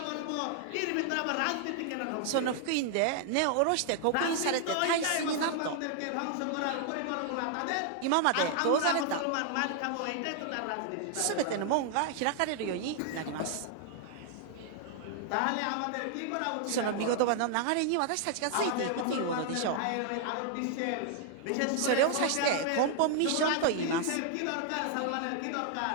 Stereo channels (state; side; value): different; both; correlation -0.01